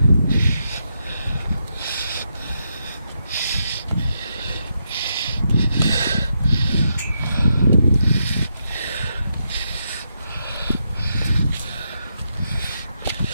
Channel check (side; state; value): both; inverted; correlation -0.82